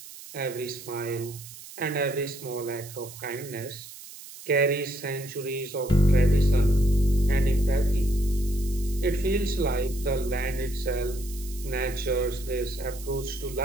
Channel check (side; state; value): right; noise; hiss, 15 dB below the sound